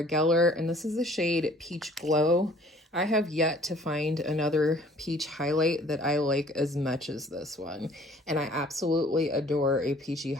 Geller, and this is the shade Peach Glow. I have yet to find another peach highlight that I like as much as this one, and I absolutely adore a peachy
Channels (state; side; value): normal; both; correlation 0.54